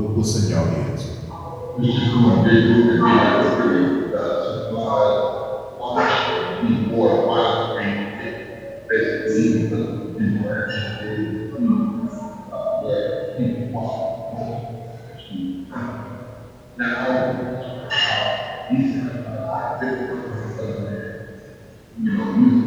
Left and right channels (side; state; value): both; identical; correlation 1.00